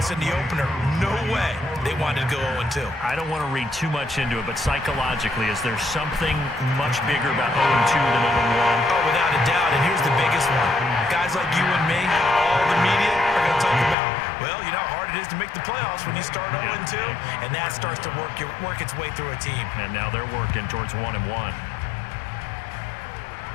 in the opener. No way they wanted to go 0-2. I don't want to read too much into it, but psychologically, is there something much bigger about 0-2 than 0-1? Oh, without a doubt, and here's the biggest one. Guys like you and me, all the media, are going to talk about, well, you know how hard it is to make the playoffs when you start 0-2, and that starts to work its way through a team. And now they're working towards 1-1.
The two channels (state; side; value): drops out; right; at 14.0 s